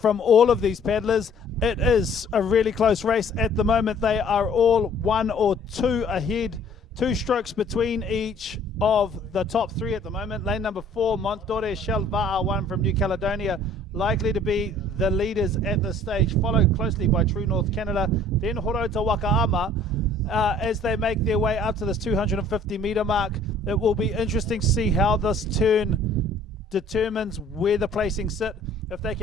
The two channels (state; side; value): normal; both; correlation 0.54